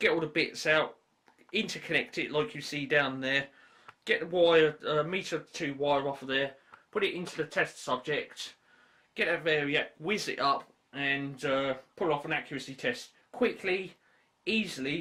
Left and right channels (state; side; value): identical; both; correlation 1.00